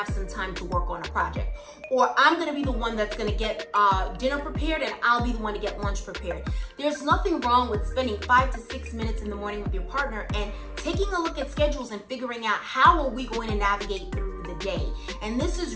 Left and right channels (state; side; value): identical; both; correlation 1.00